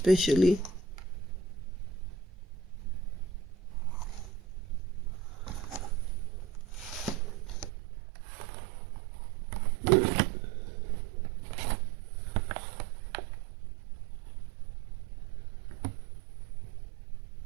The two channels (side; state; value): left; drops out; at 7.7 s